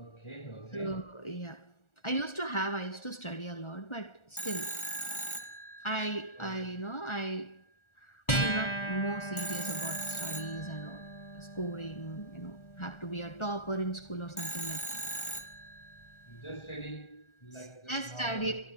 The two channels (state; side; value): late; right; 1.4 ms